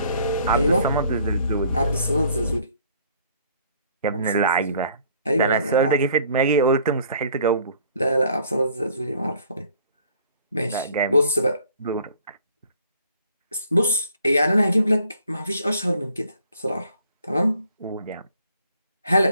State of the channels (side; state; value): both; inverted; correlation -0.59